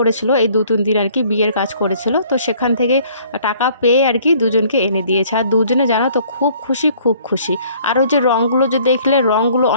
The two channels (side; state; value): both; inverted; correlation -0.57